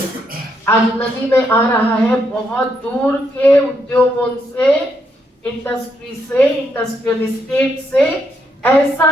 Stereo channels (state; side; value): normal; both; correlation 0.77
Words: आज नदी में आ रहा है बहुत दूर के उद्योगों से, इंडस्ट्री से, इंडस्ट्रियल एस्टेट से